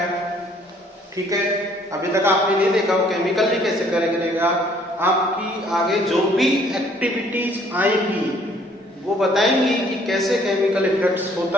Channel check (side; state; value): both; normal; correlation 0.61